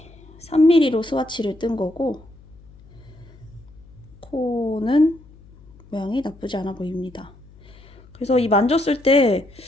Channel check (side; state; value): left; noise; hum, 24 dB below the sound